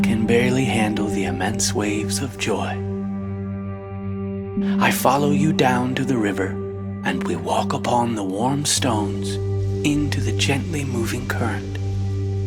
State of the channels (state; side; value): identical; both; correlation 1.00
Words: can barely handle the immense waves of joy. I follow you down to the river, and we walk upon the warm stones into the gently moving current.